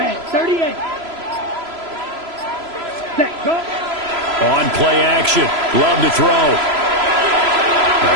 38. Set, go. On play action. Love to throw. A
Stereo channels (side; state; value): left; late; 3.0 ms